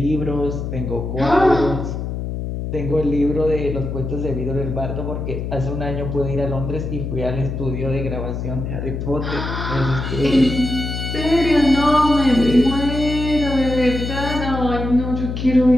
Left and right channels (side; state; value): left; noise; hum, 4 dB below the sound